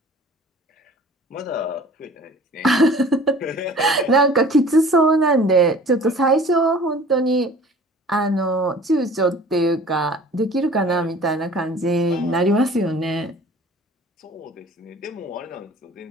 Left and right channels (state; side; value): normal; both; correlation 0.47